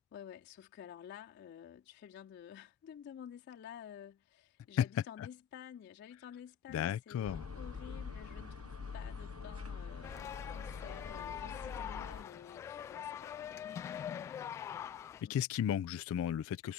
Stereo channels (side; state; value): right; quieter; 8.7 dB